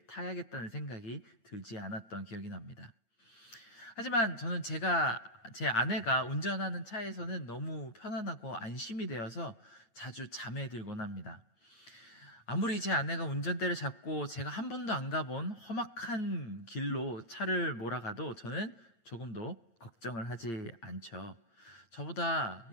타야겠다는 생각이 들지 않았던 기억이 납니다. 하지만 저는 제 아내가 운전하는 차에서는 너무 편안하고 안심이 되어서 자주 잠에 들곤 합니다. 아무리 제 아내가 운전대를 잡고 제가 한 번도 안 가본 험악한 길로 차를 몰아가도 저는 조금도 걱정을 하지 않죠. 저보다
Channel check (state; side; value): late; right; 8.7 ms